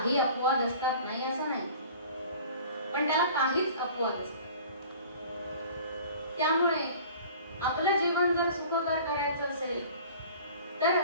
अपवाद असतात, नाही असं नाही, पण त्याला काहीच अपवाद असतात. त्यामुळे आपलं जीवन जर सुखकर करायचं असेल तर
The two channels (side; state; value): both; inverted; correlation -0.45